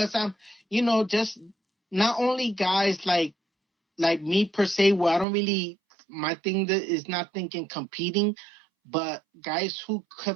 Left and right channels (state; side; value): drops out; left; at 5.2 s